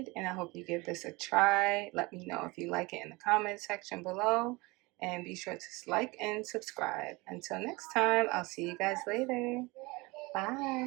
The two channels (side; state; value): left; quieter; 24.1 dB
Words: I hope you give this a try. Let me know if you like it in the comment section below, and be sure to like and subscribe. Until next time, I'll see you guys later.